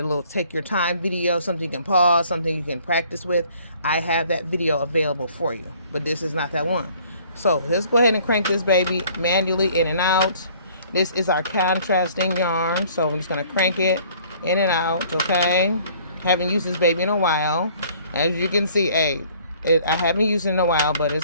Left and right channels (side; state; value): both; inverted; correlation -0.56